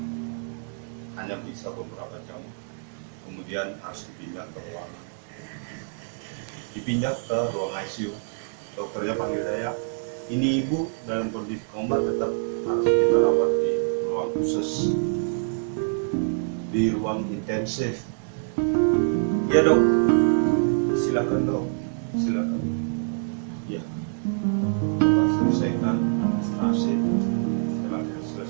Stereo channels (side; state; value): left; silent; digital silence